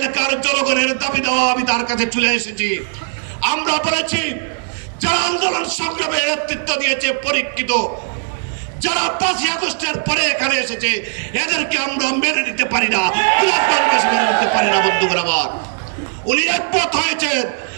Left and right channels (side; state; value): left; silent; 59 dB below the other